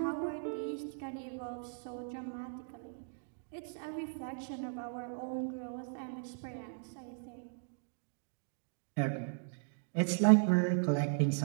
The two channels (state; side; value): silent; left; digital silence